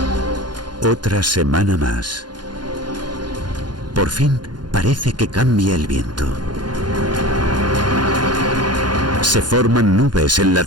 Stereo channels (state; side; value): late; left; 0.71 ms